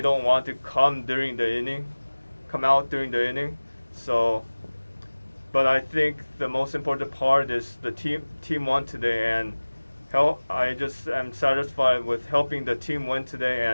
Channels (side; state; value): both; inverted; correlation -1.00